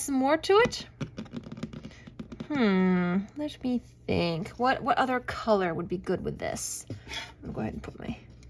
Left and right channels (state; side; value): identical; both; correlation 1.00